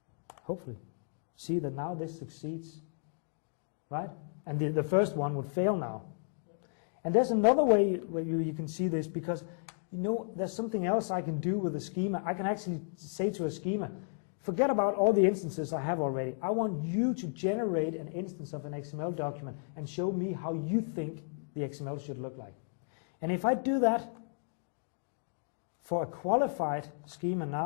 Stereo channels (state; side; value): silent; right; digital silence